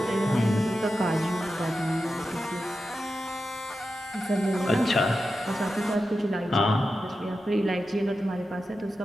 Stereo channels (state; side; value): normal; both; correlation 0.91